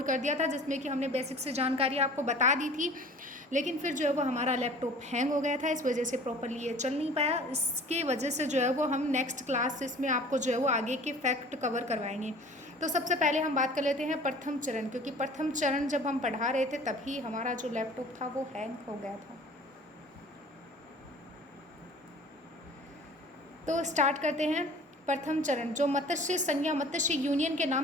कर दिया था जिसमें कि हमने बेसिक से जानकारी आपको बता दी थी। लेकिन फिर जो है वो हमारा लैपटॉप हैंग हो गया था, इस वजह से प्रॉपरली ये चल नहीं पाया। इसके वजह से जो है वो हम नेक्स्ट क्लास इसमें आपको जो है वो आगे के फैक्ट कवर करवाएंगे। तो सबसे पहले हम बात कर लेते हैं प्रथम चरण, क्योंकि प्रथम चरण जब हम पढ़ा रहे थे तभी हमारा जो लैपटॉप था वो हैंग हो गया था। तो स्टार्ट करते हैं। प्रथम चरण जो मत्स्य संघ या मत्स्य यूनियन के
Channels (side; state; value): both; normal; correlation 0.46